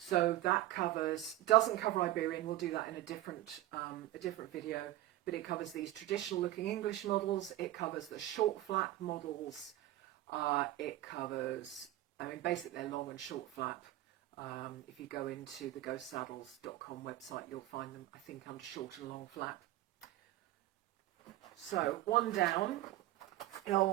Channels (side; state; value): left; quieter; 15.4 dB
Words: that doesn't cover Iberian. We'll do that in a different video, but it covers these traditional looking English models. It covers the short flap models. It covers, I mean, basically they're long and short flap. If you go into the ghostsaddles.com website, you'll find them, I think, under short and long flap. So one down, and I